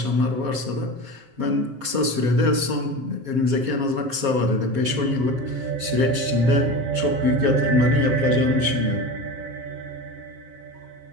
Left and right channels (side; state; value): left; late; 7.4 ms